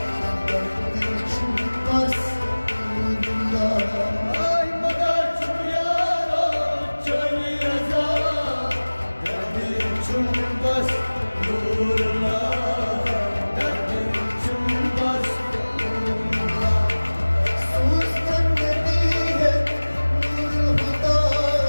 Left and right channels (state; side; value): inverted; both; correlation -1.00